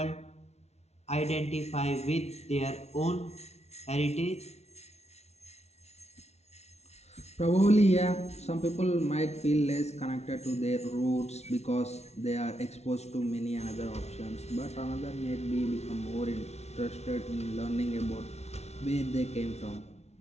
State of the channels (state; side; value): late; right; 0.31 ms